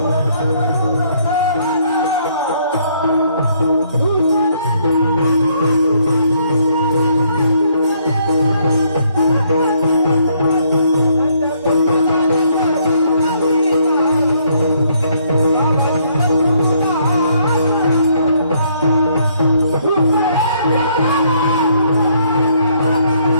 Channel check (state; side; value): inverted; both; correlation -0.68